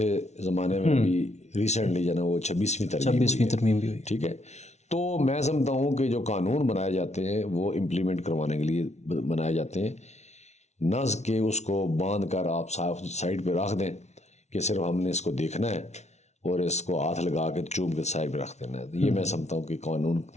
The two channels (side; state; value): right; late; 0.32 ms